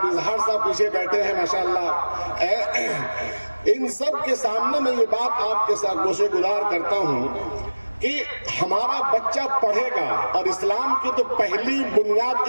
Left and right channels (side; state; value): both; inverted; correlation -1.00